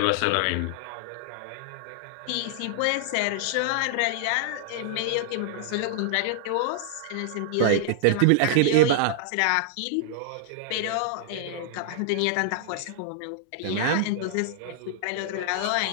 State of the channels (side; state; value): both; different; correlation -0.01